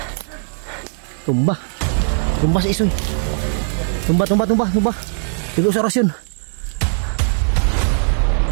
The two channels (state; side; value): silent; left; 66 dB below the other